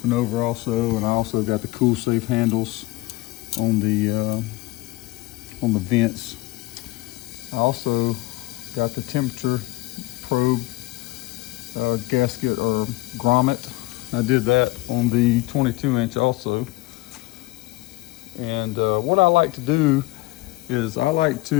over also. And I also got the cool safe handles on the vents. I also got the temperature probe gasket or grommet. I did that on the 22-inch also. And what I like to do is I like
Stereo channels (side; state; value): right; quieter; 20.6 dB